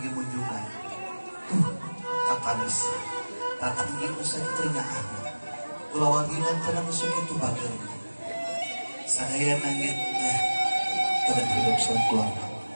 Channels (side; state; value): both; inverted; correlation -1.00